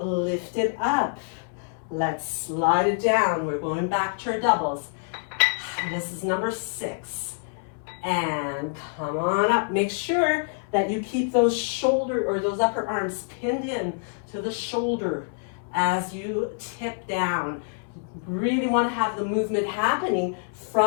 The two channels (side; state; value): right; silent; 61 dB below the other